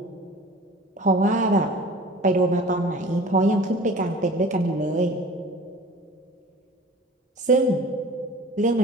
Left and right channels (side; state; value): both; normal; correlation 0.43